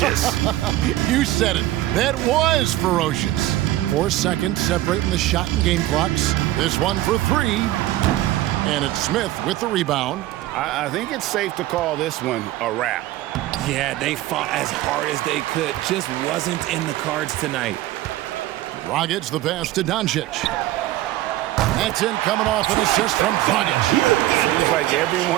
You said it. That was ferocious. 4 seconds separating the shot and game clocks. This one for 3. And it's Smith with the rebound. I think it's safe to call this one a wrap. Yeah, they fought as hard as they could. Just wasn't in the cards tonight. Dragic the pass to Doncic. That's in, coming off an assist from Dragic. Seems like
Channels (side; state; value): left; quieter; 15.6 dB